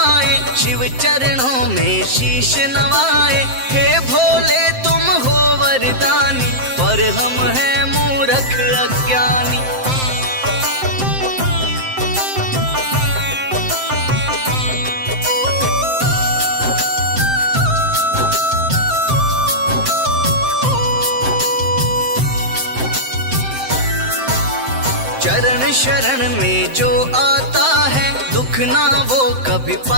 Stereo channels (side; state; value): left; late; 7.7 ms